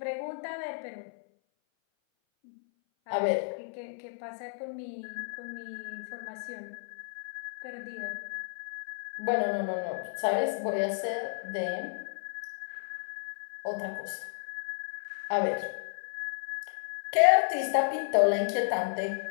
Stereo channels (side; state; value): right; silent; 56 dB below the other